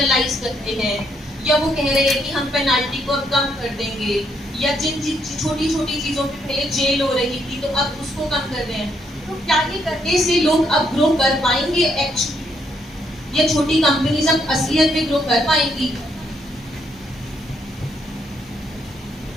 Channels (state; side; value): normal; both; correlation 0.74